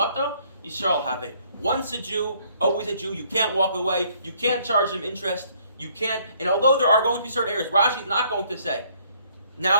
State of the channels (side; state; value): both; inverted; correlation -0.64